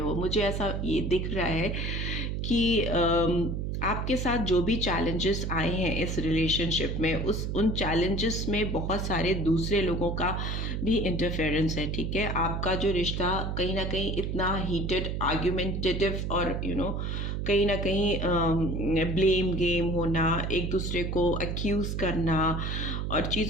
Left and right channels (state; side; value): noise; right; hum, 2 dB below the sound